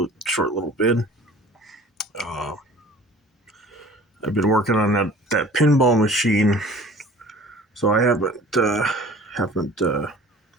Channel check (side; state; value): both; normal; correlation 0.46